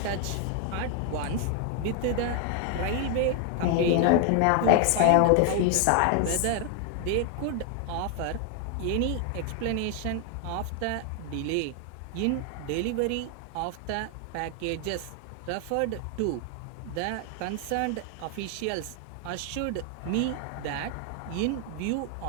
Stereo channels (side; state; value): both; different; correlation 0.00